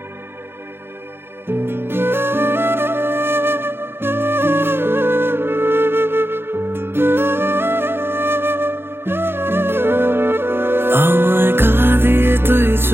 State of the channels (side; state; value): left; late; 0.11 ms